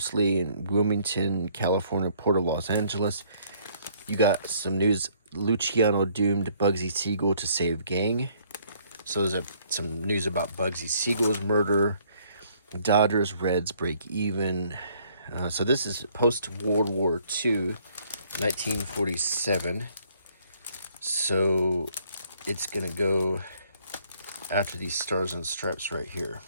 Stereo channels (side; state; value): both; inverted; correlation -0.64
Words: in Wilmington, California, Port of Los Angeles. You got some news. Luciano doomed Bugsy Siegel to save gang. So there's some news about Bugsy Siegel's murder. Dodgers, Reds break even. So this is post-World War II, 1947. So it's going to go after these stars and stripes right here.